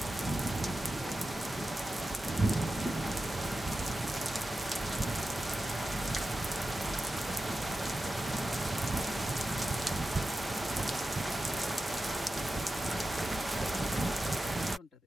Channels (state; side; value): normal; both; correlation 0.93